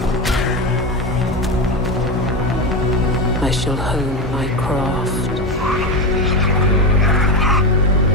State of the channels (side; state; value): both; normal; correlation 0.17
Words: I shall hone my craft.